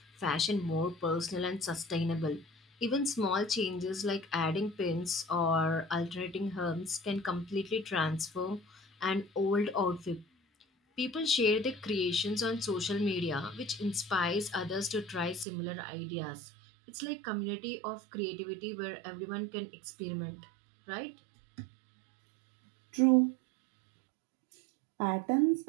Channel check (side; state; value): left; drops out; at 15.5 s